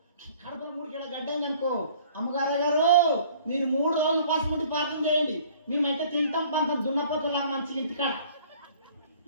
కడపలో 3 కిలో గడ్డ అయిందనుకో, అమ్మగారు గారు మీరు 3 రోజులు పాసుకుంటే ప్రార్థన చేయండి, మేమైతే తింటాం పంతం దున్నపోతులాగా మంచి ఇంటికాడ.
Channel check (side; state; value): both; inverted; correlation -0.54